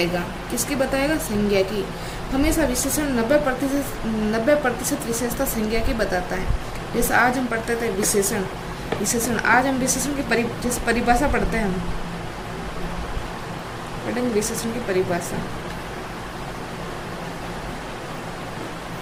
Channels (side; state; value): both; identical; correlation 1.00